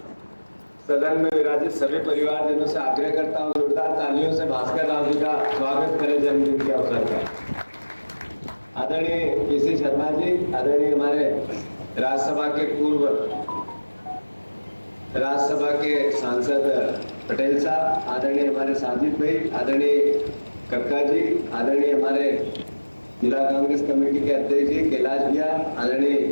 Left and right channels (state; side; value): inverted; both; correlation -1.00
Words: सदन में विराजित सभी परिवारजनों से आग्रह करता हूँ, जोरदार तालियों से भास्कर राव जी का स्वागत करें जन्मदिन के अवसर पर। आदरणीय पीसी शर्मा जी, आदरणीय हमारे राज्यसभा के पूर्व राज्यसभा के सांसद पटेल साहब, आदरणीय हमारे साजिद भाई, आदरणीय कक्का जी, आदरणीय हमारे जिला कांग्रेस कमेटी के अध्यक्ष जी कैलाश भैया, आदरणीय